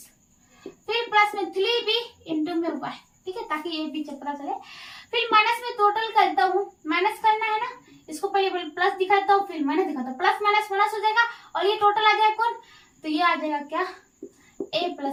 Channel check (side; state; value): both; identical; correlation 1.00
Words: फिर प्लस में 3b इंटू में y, ठीक है, ताकि ये भी चक्रा चले। फिर माइनस में टोटल करता हूँ, माइनस करना है ना, इसको पहले प्लस दिखाता हूँ फिर माइनस दिखाता हूँ, प्लस माइनस माइनस हो जाएगा और ये टोटल आ जाएगा कौन, तो ये आ जाएगा क्या a